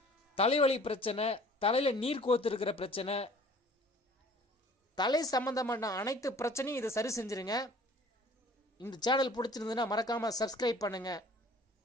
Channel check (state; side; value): normal; both; correlation 0.50